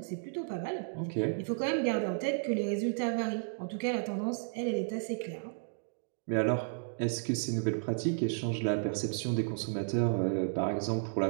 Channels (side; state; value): left; silent; digital silence